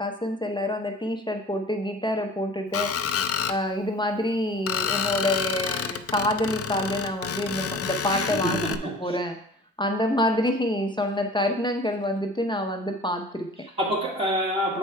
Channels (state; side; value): normal; both; correlation 0.43